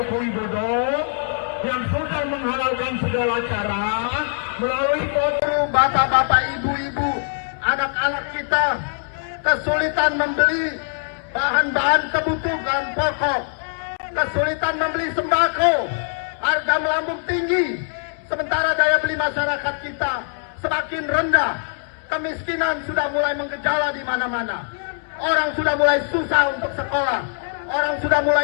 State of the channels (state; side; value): silent; right; digital silence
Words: Widodo yang sudah menghalalkan segala cara melalui foto bapak-bapak, ibu-ibu, anak-anak kita kesulitan membeli bahan-bahan kebutuhan pokok, kesulitan membeli sembako, harga melambung tinggi, sementara daya beli masyarakat kita semakin rendah, kemiskinan sudah mulai menggejala di mana-mana, orang sudah mulai susah untuk sekolah, orang sudah